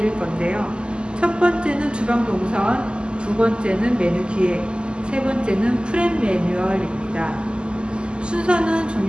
건데요. 첫 번째는 주방 동선, 두 번째는 메뉴 기획, 세 번째는 프렘 매뉴얼입니다. 순서는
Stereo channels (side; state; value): left; late; 0.049 ms